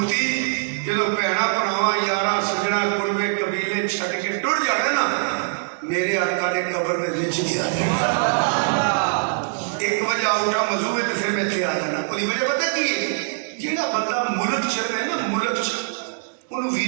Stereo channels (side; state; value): left; silent; digital silence